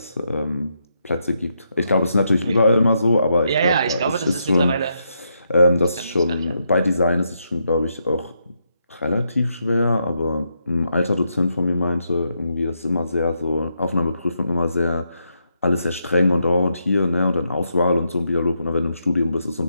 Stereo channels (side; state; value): both; inverted; correlation -0.81